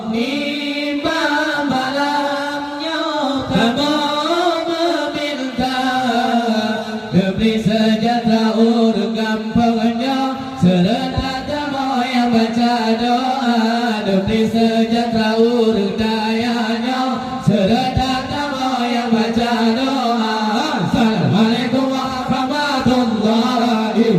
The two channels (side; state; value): both; identical; correlation 1.00